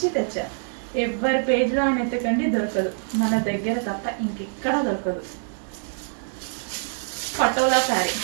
తెచ్చా. ఎవరి పేజ్లో ఆయన ఎత్తకండి, దొరకదు. మన దగ్గర తప్ప ఇంకెక్కడా దొరకదు. పటోలా శారీ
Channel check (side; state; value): left; silent; digital silence